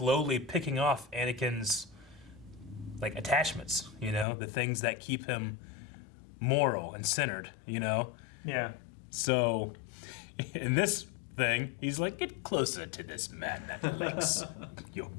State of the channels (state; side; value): drops out; right; at 4.2 s